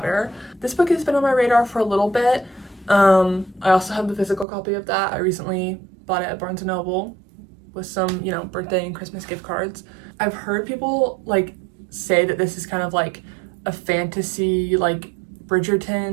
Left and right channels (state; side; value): drops out; left; at 4.5 s